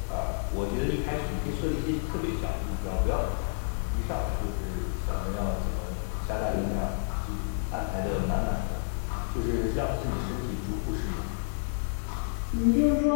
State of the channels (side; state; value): right; silent; digital silence